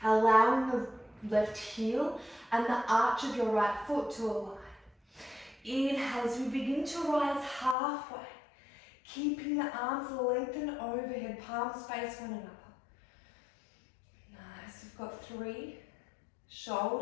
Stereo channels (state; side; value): drops out; right; at 7.8 s